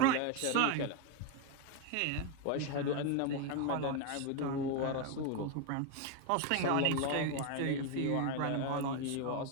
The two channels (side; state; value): both; different; correlation 0.02